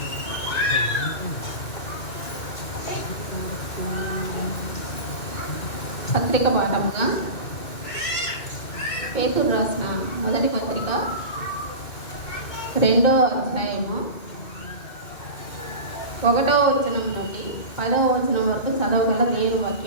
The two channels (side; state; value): right; late; 2.4 ms